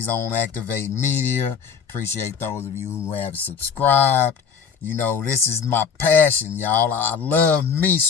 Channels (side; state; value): right; quieter; 6.7 dB